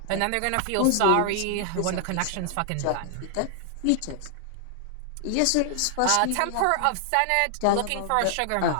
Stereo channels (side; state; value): both; different; correlation 0.00